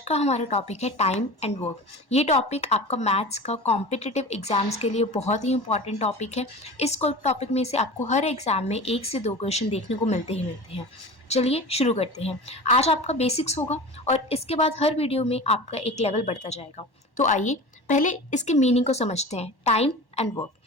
हमारा टॉपिक है टाइम एंड वर्क। ये टॉपिक आपका मैथ्स का कॉम्पिटिटिव एग्जाम्स के लिए बहुत ही इंपॉर्टेंट टॉपिक है। इस टॉपिक में से आपको हर एग्जाम में 1 से 2 क्वेश्चन देखने को मिलते हैं। चलिए शुरू करते हैं। आज आपका बेसिक्स होगा और इसके बाद हर वीडियो में आपका एक लेवल बढ़ता जाएगा। तो आइए पहले इसके मीनिंग को समझते हैं। Time and work.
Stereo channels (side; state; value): right; late; 1.1 ms